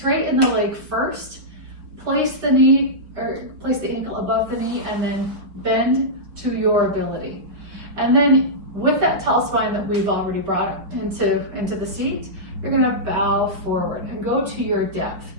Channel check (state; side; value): late; left; 5.1 ms